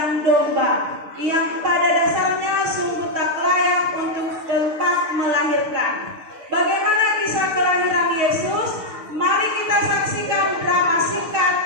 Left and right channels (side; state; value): left; late; 6.6 ms